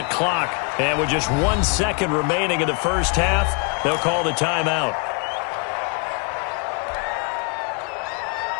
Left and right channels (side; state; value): right; quieter; 36.3 dB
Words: clock. And with just 1 second remaining in the first half, they'll call the timeout.